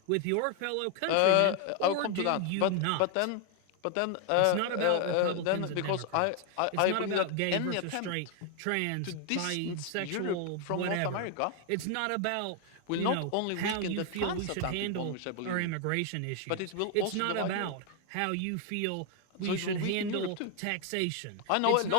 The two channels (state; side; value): different; both; correlation 0.00